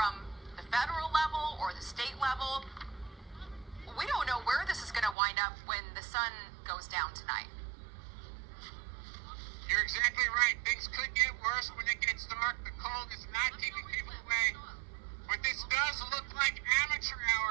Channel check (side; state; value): left; drops out; at 5.2 s